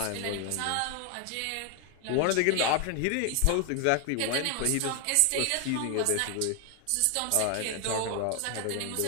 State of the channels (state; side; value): different; both; correlation 0.01